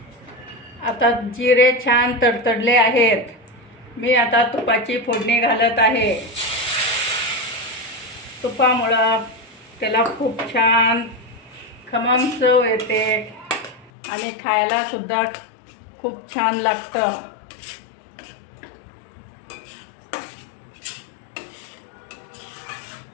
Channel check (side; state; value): right; drops out; at 13.9 s